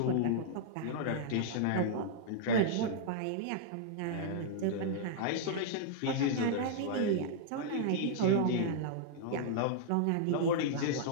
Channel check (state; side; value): different; both; correlation -0.02